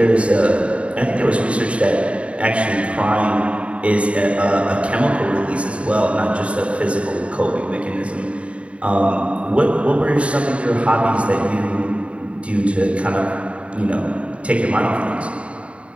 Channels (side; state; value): left; late; 0.062 ms